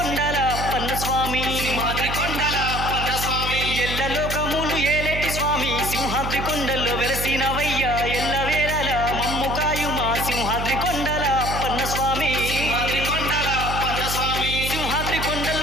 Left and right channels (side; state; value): right; noise; hum, 4 dB below the sound